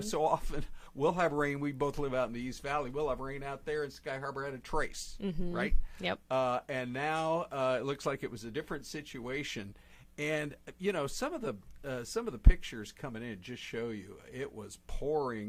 so often we'll have rain. We both live out in the East Valley. We'll have rain out there, and Sky Harbor had a trace, right? Yep. And now it looks like it was a different situation. And you know, some of the pictures coming in just show you it was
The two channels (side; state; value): both; identical; correlation 1.00